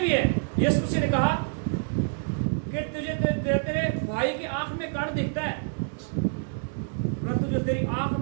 है, यीशु मसीह ने कहा कि तुझे तेरे भाई की आंख में कण दिखता है, परंतु जो तेरी आंख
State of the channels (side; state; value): left; silent; digital silence